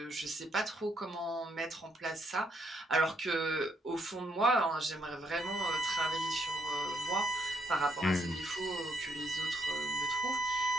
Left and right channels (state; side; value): normal; both; correlation 0.74